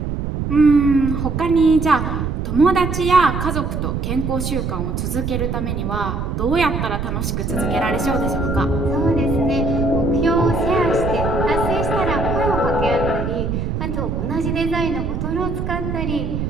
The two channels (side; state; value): right; noise; rumble, 2 dB below the sound